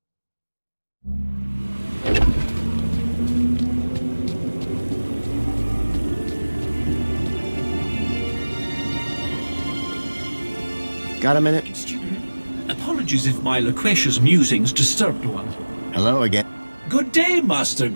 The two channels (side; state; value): both; inverted; correlation -1.00